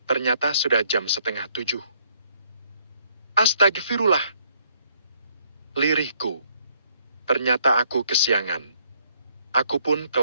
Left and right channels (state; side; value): inverted; both; correlation -0.68